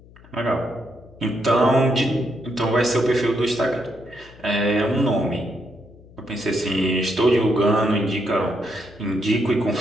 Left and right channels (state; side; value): noise; left; hum, 23 dB below the sound